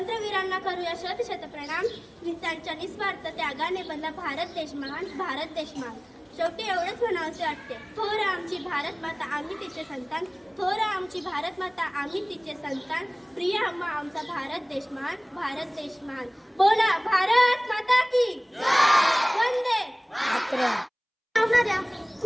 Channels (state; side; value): identical; both; correlation 1.00